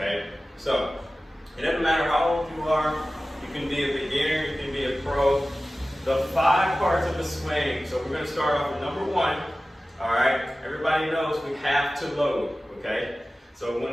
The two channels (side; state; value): both; normal; correlation 0.96